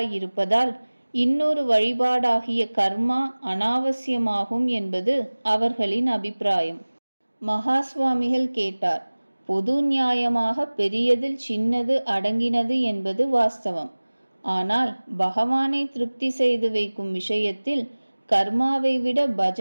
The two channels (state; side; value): inverted; both; correlation -1.00